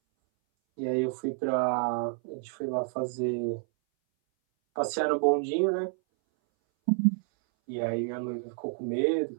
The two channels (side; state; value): left; silent; 58 dB below the other